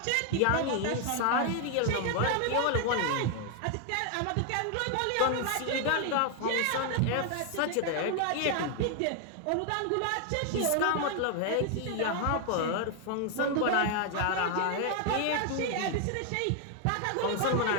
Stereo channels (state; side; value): different; both; correlation 0.00